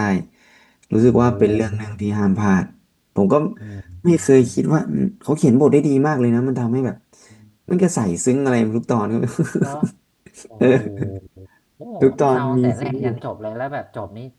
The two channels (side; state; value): both; identical; correlation 1.00